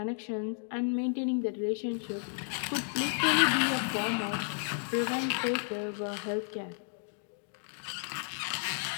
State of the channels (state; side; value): silent; right; 56 dB below the other